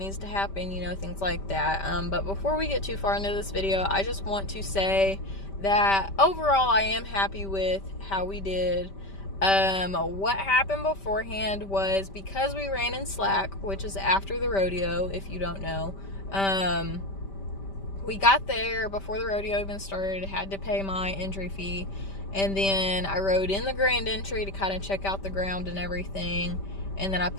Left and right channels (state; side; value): late; right; 5.1 ms